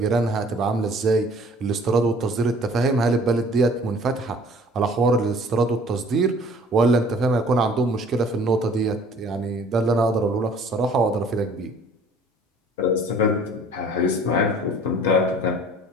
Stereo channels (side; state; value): both; normal; correlation 0.52